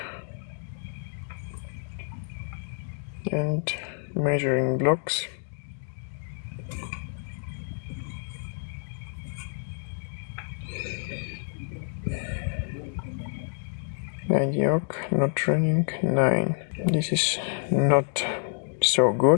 and measuring blocks. Mediocre, not running 9. This is not so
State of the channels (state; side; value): silent; right; 59 dB below the other